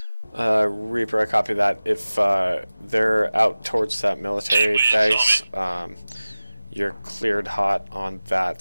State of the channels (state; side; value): inverted; both; correlation -0.97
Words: Reaper, I copy that. If they're out towards that military base, you're cleared hot on